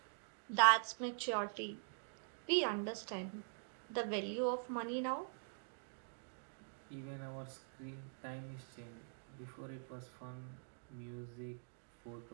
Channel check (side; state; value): left; silent; digital silence